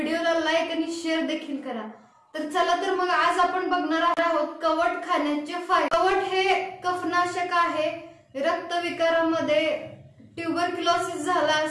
लाईक आणि शेअर देखील करा। तर चला तर मग आज आपण बघणार आहोत कवठ खाण्याचे फायदे। कवठ हे कफनाशक आहे। रक्तविकारामध्ये ट्यूबरक्युलोसिस झाला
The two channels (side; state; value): both; identical; correlation 1.00